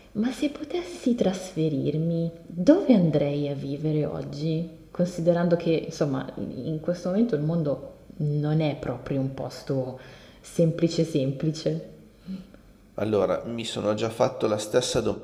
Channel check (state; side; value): identical; both; correlation 1.00